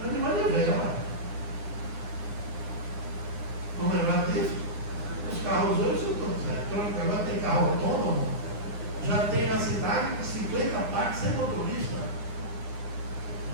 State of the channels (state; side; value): late; left; 9.9 ms